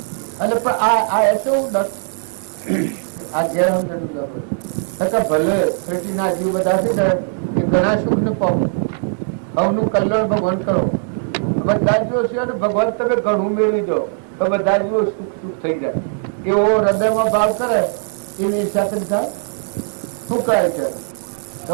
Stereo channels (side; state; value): left; silent; 66 dB below the other